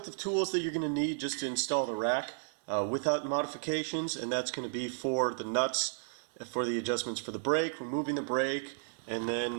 the tools that you're going to need just to install the rack without modifications, and that's going to be for the nuts, for the adjustments for the brake, removing the brake, and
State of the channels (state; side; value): silent; left; digital silence